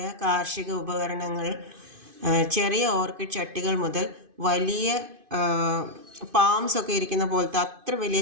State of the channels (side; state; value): left; late; 2.5 ms